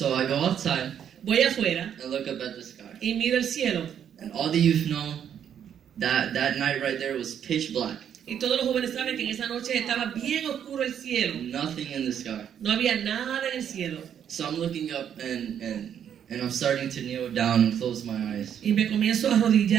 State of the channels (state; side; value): quieter; left; 8.9 dB